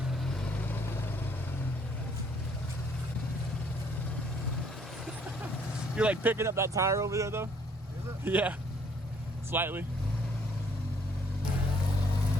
You're like picking up that tire over there, though. Is it? Yeah, slightly.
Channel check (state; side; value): normal; both; correlation 0.64